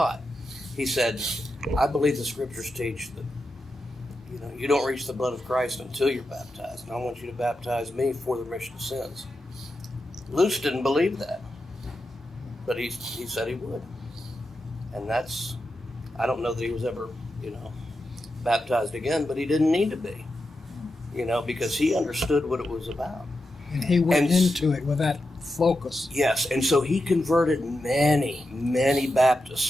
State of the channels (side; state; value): both; normal; correlation 0.89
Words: He said, I believe the scriptures teach that, you don't reach the blood of Christ until you're baptized. And I want you to baptize me for the remission of sins. Luce didn't believe that. But he said he would. And I don't know that he was ever, baptized again, but he didn't need to be. Because he understood what it was about. And he went into it with that focus. Yes, and so he converted many, many